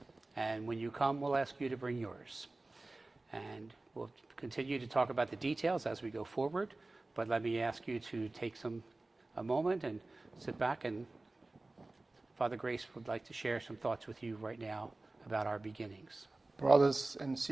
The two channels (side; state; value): left; quieter; 3.1 dB